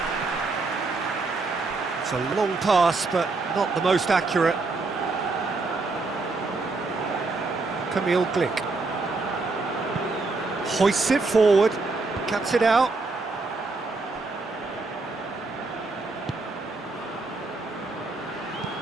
It's a long pass, but not the most accurate. Camille Glick hoists it forward, cuts it out.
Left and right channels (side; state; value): left; quieter; 3.7 dB